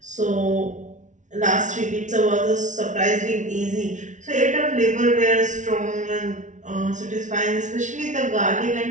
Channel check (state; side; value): late; left; 0.36 ms